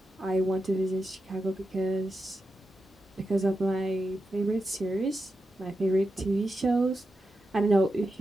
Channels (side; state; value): both; normal; correlation 0.89